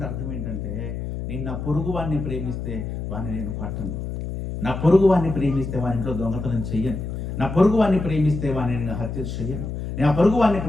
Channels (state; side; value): noise; left; hum, 5 dB below the sound